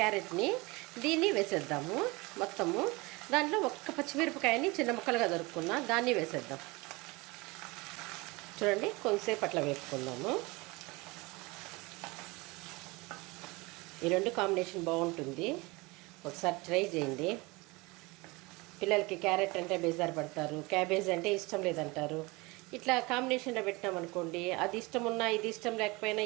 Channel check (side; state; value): left; quieter; 24.5 dB